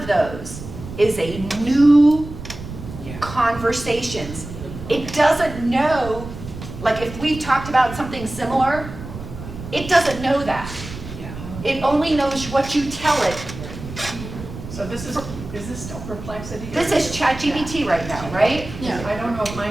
those is a new Yeah. conversations. It doesn't know, like if we've talked about something similar, it doesn't know that. Yeah. It only knows what you tell it. So this is this still Perplexity? This is ChatGPT right now, right? Yeah. I don't know if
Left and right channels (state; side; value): noise; right; rumble, 11 dB below the sound